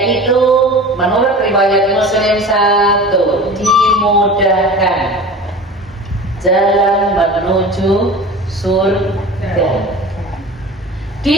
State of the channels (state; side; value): normal; both; correlation 0.36